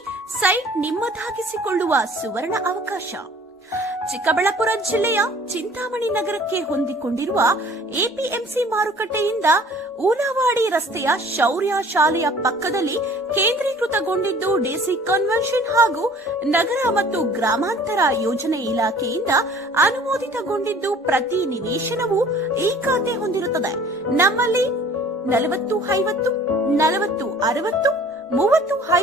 ಸೈಟ್ ನಿಮ್ಮದಾಗಿಸಿಕೊಳ್ಳುವ ಸುವರ್ಣ ಅವಕಾಶ. ಚಿಕ್ಕಬಳ್ಳಾಪುರ ಜಿಲ್ಲೆಯ ಚಿಂತಾಮಣಿ ನಗರಕ್ಕೆ ಹೊಂದಿಕೊಂಡಿರುವ ಎಪಿಎಂಸಿ ಮಾರುಕಟ್ಟೆಯಿಂದ ಊನವಾಡಿ ರಸ್ತೆಯ ಶೌರ್ಯ ಶಾಲೆಯ ಪಕ್ಕದಲ್ಲಿ ಕೇಂದ್ರೀಕೃತಗೊಂಡಿದ್ದು ಡಿಸಿ ಕನ್ವೆನ್ಷನ್ ಹಾಗೂ ನಗರ ಮತ್ತು ಗ್ರಾಮಾಂತರ ಯೋಜನೆ ಇಲಾಖೆಯಿಂದ ಅನುಮೋದಿತಗೊಂಡಿದ್ದು ಪ್ರತಿ ನಿವೇಶನವು ಈ ಖಾತೆ ಹೊಂದಿರುತ್ತದೆ. ನಮ್ಮಲ್ಲಿ 40-50, 40-60,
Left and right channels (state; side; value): normal; both; correlation 0.51